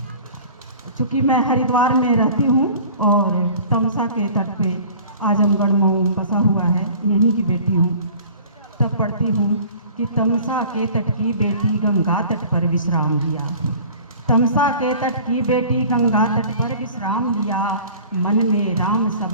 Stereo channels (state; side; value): inverted; both; correlation -0.46